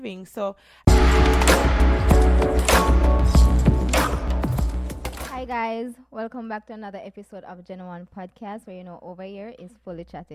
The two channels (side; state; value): both; identical; correlation 1.00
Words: So Hi guys, welcome back to another episode of Gen One Podcast, where over here is fully